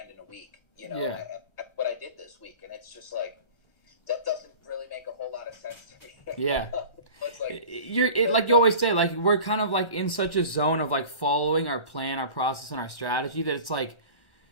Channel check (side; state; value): right; late; 1.3 ms